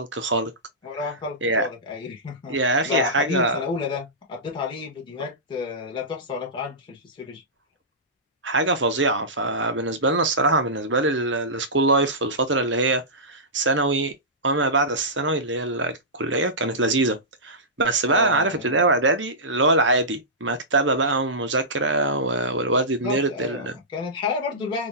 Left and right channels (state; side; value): normal; both; correlation -0.17